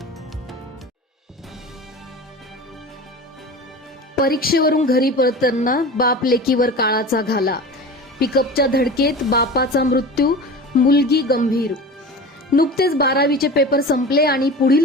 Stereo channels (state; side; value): normal; both; correlation 0.33